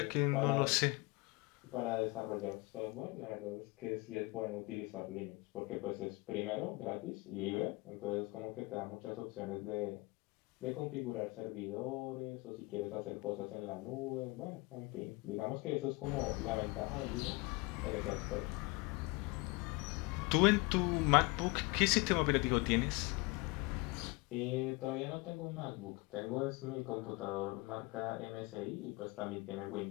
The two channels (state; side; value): quieter; right; 25.2 dB